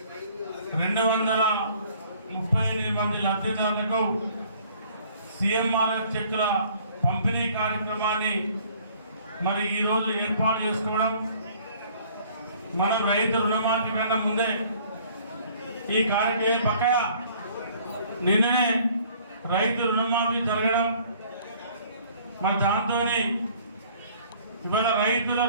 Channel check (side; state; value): both; inverted; correlation -0.56